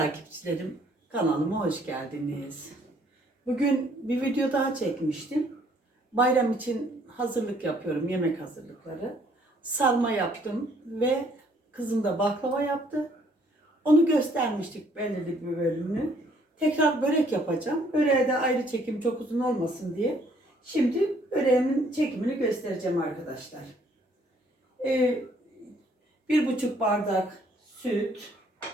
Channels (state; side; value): normal; both; correlation 0.64